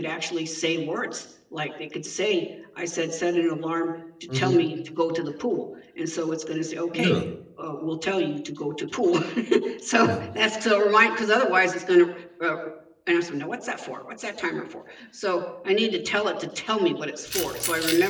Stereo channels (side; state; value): both; identical; correlation 1.00